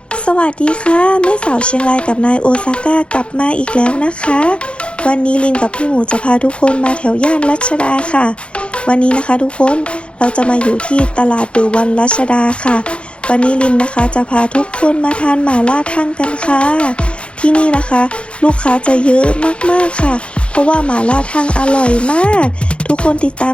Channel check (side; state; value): right; late; 0.058 ms